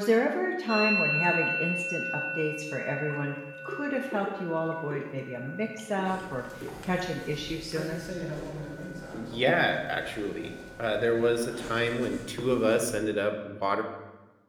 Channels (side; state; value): both; identical; correlation 1.00